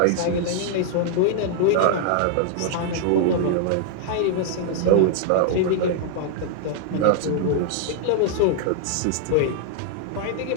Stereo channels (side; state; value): both; different; correlation -0.01